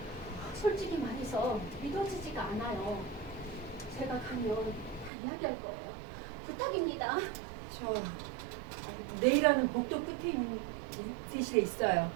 솔직히 말해서 믿어지지가 않아요. 제가 가면 다 이야기할 거예요. 부탁입니다. 저 내일하는 복도 끝에 있는 대실에 있어요.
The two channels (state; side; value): drops out; left; at 5.1 s